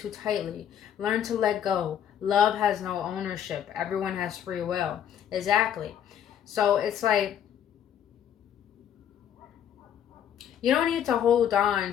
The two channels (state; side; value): quieter; right; 9.5 dB